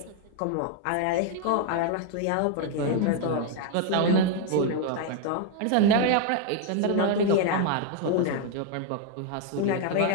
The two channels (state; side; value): different; both; correlation 0.00